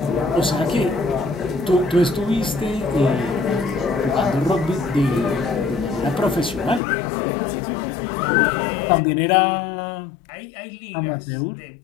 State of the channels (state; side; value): drops out; right; at 6.8 s